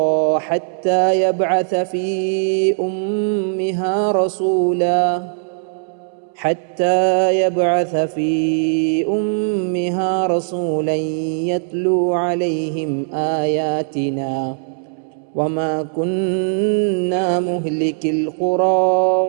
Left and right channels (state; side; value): silent; left; 67 dB below the other